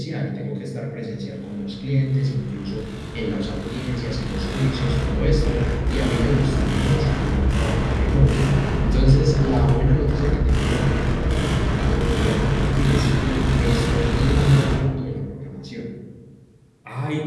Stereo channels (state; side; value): identical; both; correlation 1.00